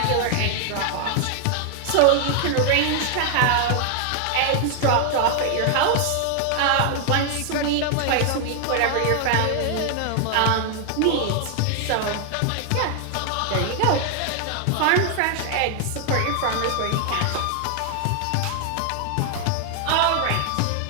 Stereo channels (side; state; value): both; different; correlation 0.00